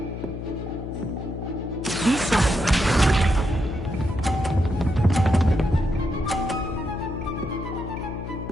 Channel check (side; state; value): left; noise; hum, 7 dB below the sound